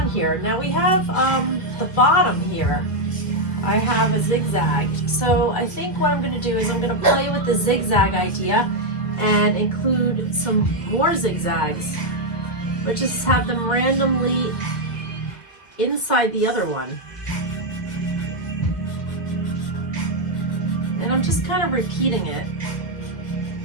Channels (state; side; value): late; right; 1.9 ms